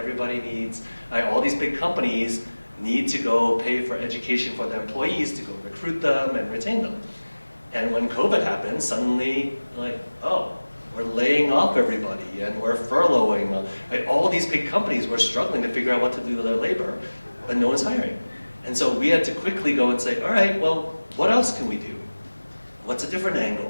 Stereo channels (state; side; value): inverted; both; correlation -1.00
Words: needs, all these big companies need to go pay for education for their employees to go recruit them and retain them. And when COVID happened, suddenly, like, oh, we're laying off everybody, and we're furloughing. Right? All these big companies were struggling to figure out what to do with their labor, but no one's hiring. And so we had to quickly go and say, all right, well, what else can we do? What's a different